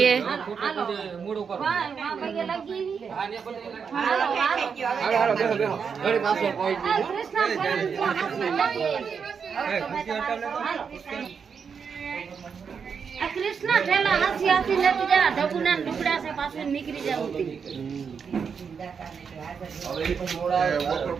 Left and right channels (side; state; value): left; quieter; 6.3 dB